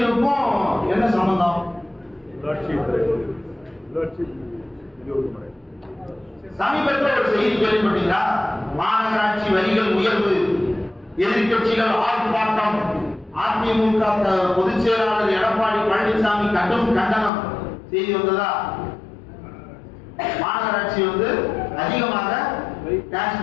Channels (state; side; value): drops out; right; at 17.3 s